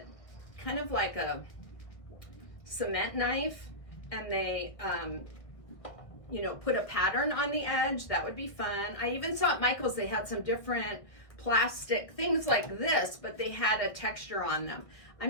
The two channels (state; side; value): late; right; 1.5 ms